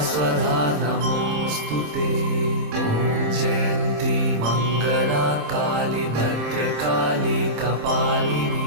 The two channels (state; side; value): late; left; 27 ms